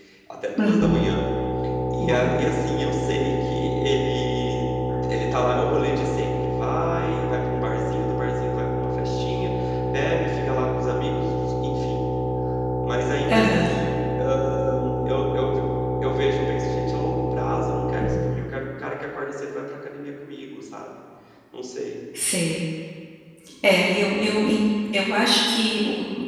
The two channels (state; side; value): identical; both; correlation 1.00